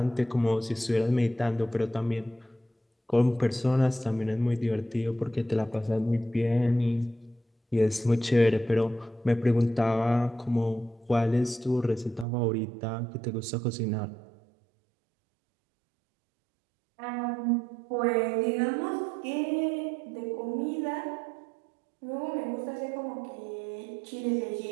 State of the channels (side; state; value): left; drops out; at 12.2 s